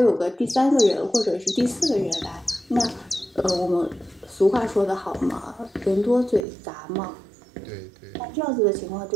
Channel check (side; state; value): left; drops out; at 6.5 s